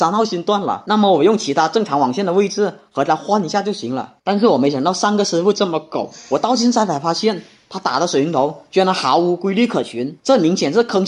号芯断了，那么我用其他正常网线的位置和它换一下就行了。但是我没想到上个师傅这么狗，我到现在才发现他打的水晶头居然毫无规律可循，这明显是坑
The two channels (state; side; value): identical; both; correlation 1.00